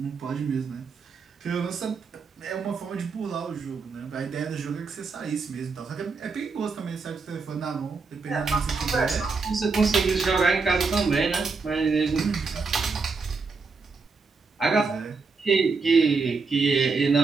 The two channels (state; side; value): quieter; left; 4.6 dB